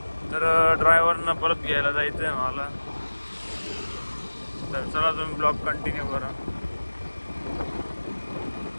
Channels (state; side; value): inverted; both; correlation -1.00